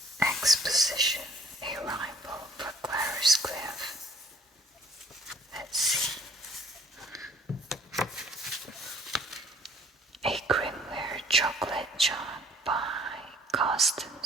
Exposition, a rival for Clarice Cliff. Let's see. A Grimware chocolate jug by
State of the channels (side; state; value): both; normal; correlation 0.57